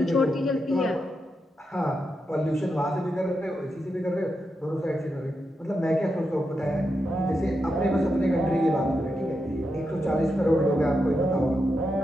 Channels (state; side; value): normal; both; correlation 0.86